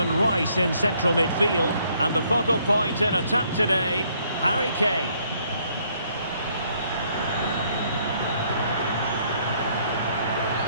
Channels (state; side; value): inverted; both; correlation -0.67